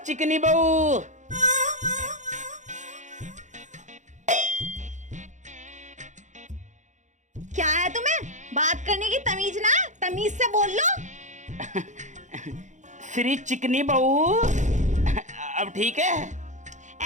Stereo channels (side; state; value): left; late; 0.35 ms